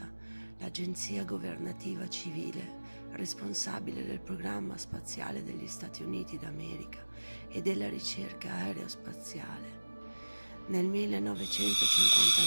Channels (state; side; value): inverted; both; correlation -1.00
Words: l'agenzia governativa civile responsabile del programma spaziale degli Stati Uniti d'America e della ricerca aerospaziale. Nel